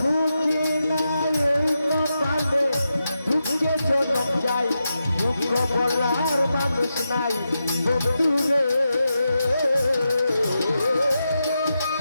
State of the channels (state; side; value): inverted; both; correlation -0.88